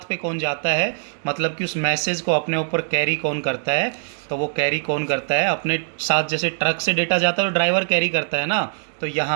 पे कौन जाता है, मतलब कि उस मैसेज को अपने ऊपर कैरी कौन करता है, तो वो कैरी कौन करता है अपने साथ, जैसे ट्रक से डेटा जाता है तो ड्राइवर कैरी करता है ना, तो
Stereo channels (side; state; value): left; silent; digital silence